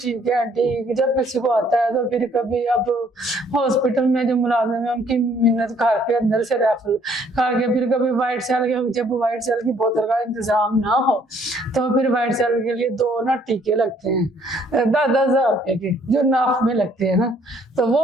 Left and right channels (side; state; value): both; normal; correlation 0.63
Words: है आंटी। जब किसी को आता है तो फिर कभी अब हॉस्पिटल में जो मुलाजिम है उनकी मिन्नत करके अंदर से रेफर करके, फिर कभी व्हाइट सेल के, जब व्हाइट सेल की बोतल का इंतजाम ना हो तो फिर व्हाइट सेल के लिए 2 ना टीके लगते हैं 10,000 रुपए के, जो नाफ में लगते हैं ना, तो वो